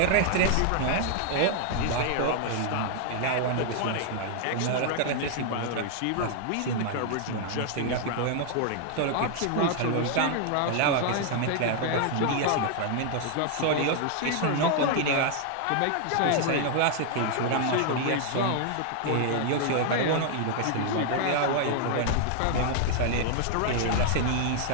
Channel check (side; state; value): both; different; correlation 0.00